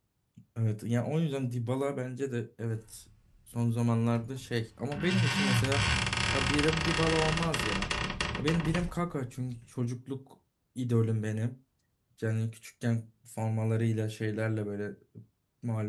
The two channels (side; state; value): both; identical; correlation 1.00